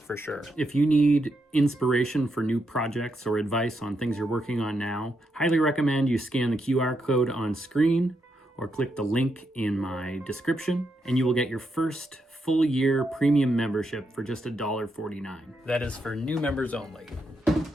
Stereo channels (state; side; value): normal; both; correlation 0.81